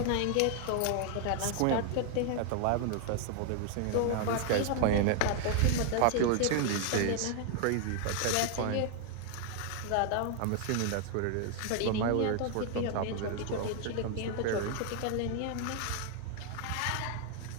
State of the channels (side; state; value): both; different; correlation 0.00